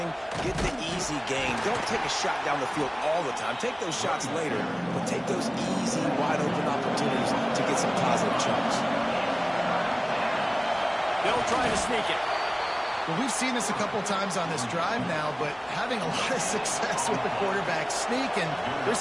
Get the easy gain. Don't take a shot down the field all the time. Take those shots later, but take those easy, wide-open opportunities to get some positive chunks. They'll try to sneak it. Well, we've seen this a couple times on this drive now, but having a lot of success with the quarterback sneak, and there's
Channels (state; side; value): identical; both; correlation 1.00